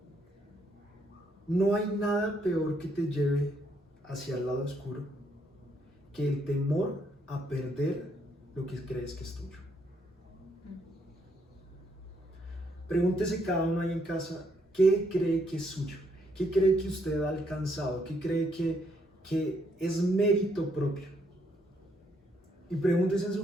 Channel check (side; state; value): both; normal; correlation 0.73